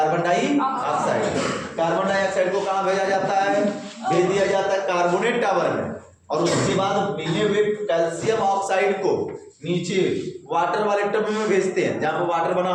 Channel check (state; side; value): identical; both; correlation 1.00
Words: डाइऑक्साइड। कार्बन डाइऑक्साइड को कहाँ भेजा जाता है? भेज दिया जाता है कार्बोनेट टावर में और उसके बाद मिले हुए कैल्शियम ऑक्साइड को नीचे वाटर वाले टब में भेजते हैं, जहां पर वाटर बना